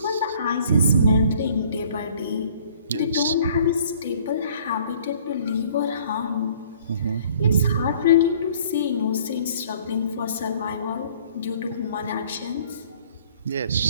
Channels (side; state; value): both; inverted; correlation -0.56